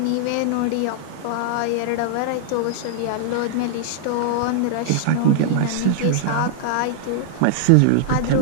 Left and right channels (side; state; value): both; different; correlation -0.01